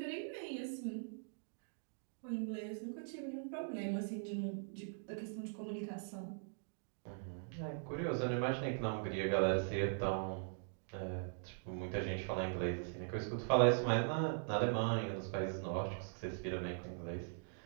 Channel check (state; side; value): silent; left; digital silence